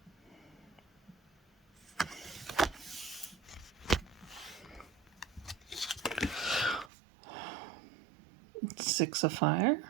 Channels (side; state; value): left; drops out; at 6.9 s